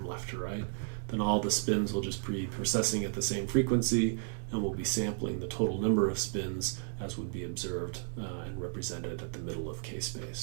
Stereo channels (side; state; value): left; silent; digital silence